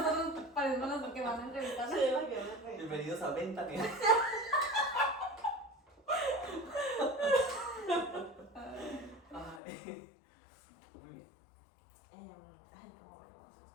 parecemos los que van a entrevistar. Bienvenidos a Ventania. Ay, muy bien. Ay, ¿cómo veremos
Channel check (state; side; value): drops out; right; at 9.6 s